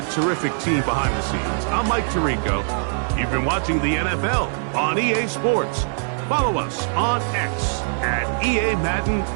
terrific team behind the scenes, I'm Mike Tirico. You've been watching the NFL on EA Sports. Follow us on X at EA Madden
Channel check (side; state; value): left; silent; digital silence